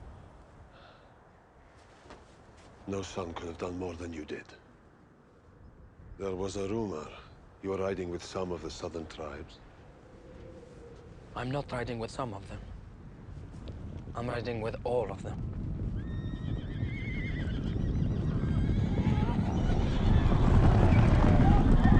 No son could have done more than you did. There was a rumor you were riding with some of the southern tribes. I'm not riding with some of them. I'm riding with all of them.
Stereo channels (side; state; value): both; identical; correlation 1.00